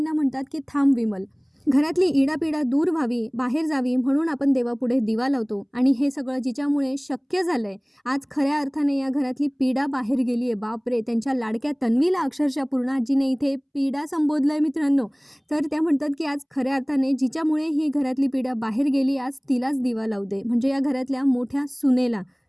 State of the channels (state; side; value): identical; both; correlation 1.00